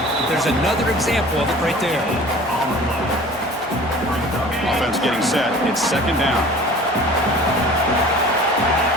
There's another example of it right there. Offense getting set. It's second down.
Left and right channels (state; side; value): normal; both; correlation 0.44